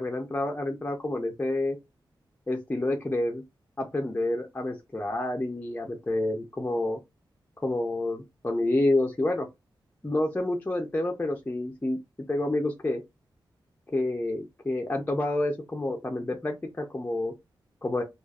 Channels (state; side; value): normal; both; correlation 0.92